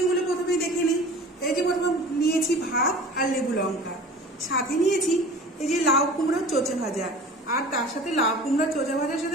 প্রথমেই দেখে নিই। এই যে প্রথমে নিয়েছি ভাত আর লেবু লঙ্কা, সাথে নিয়েছি এই যে লাউ কুমড়োর চোচা ভাজা, আর তার সাথে লাউ কুমড়োর চোচা ভাজার সাথে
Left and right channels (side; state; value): both; normal; correlation 0.41